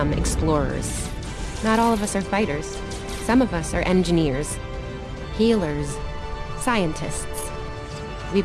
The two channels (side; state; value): both; identical; correlation 1.00